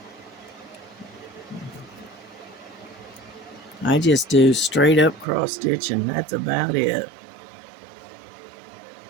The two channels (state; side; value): drops out; left; at 5.2 s